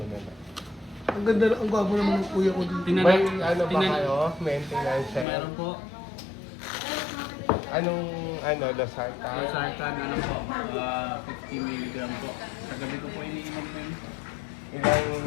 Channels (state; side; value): drops out; right; at 5.2 s